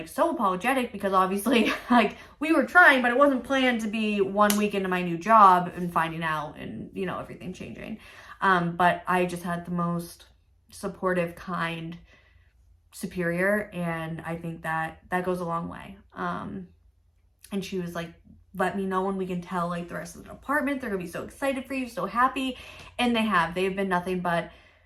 so apologetic because obviously like we were trying, but it wasn't planned to be 1 week into my new job and finding out and, you know, everything changing. But I just had the most supportive, kind superior. And I think that goes a long way. And she was like, let me know when we can tell like the rest of the department. They're gonna be so excited for you, so happy. And they've been nothing but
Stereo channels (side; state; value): both; identical; correlation 1.00